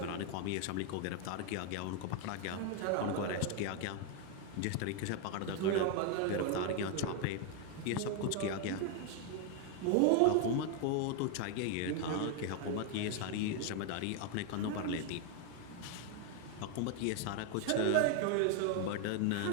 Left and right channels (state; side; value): different; both; correlation 0.01